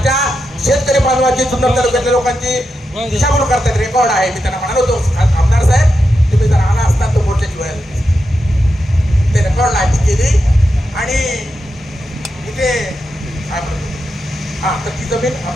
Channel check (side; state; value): both; normal; correlation 0.87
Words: शेतकरी बांधवाची जुन्नर तालुक्यातल्या लोकांची दिशाभूल करतात रेकॉर्ड आहे. मी त्यांना म्हणालो होतो आमदार साहेब